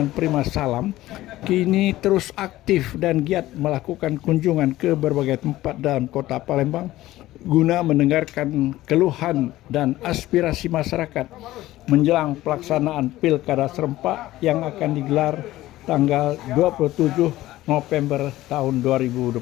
Prima Salam kini terus aktif dan giat melakukan kunjungan ke berbagai tempat dalam kota Palembang guna mendengarkan keluhan dan aspirasi masyarakat menjelang pelaksanaan Pilkada serentak yang akan digelar tanggal 27 November tahun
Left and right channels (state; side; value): quieter; right; 16.0 dB